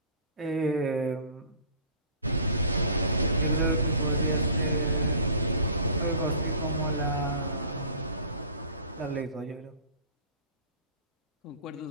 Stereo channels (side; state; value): both; inverted; correlation -0.46